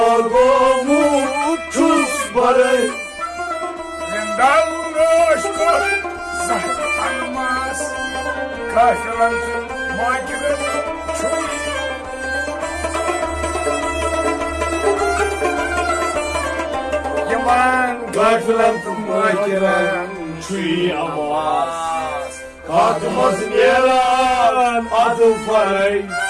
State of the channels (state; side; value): identical; both; correlation 1.00